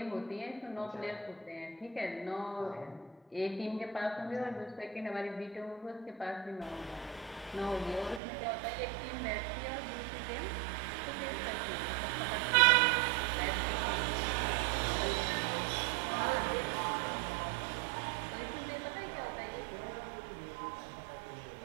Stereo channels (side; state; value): left; drops out; at 8.2 s